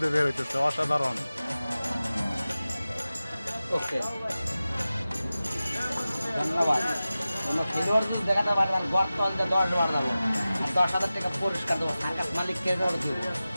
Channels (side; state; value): both; inverted; correlation -0.95